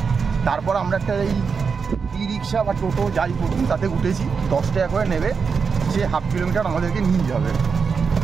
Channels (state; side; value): quieter; left; 5.6 dB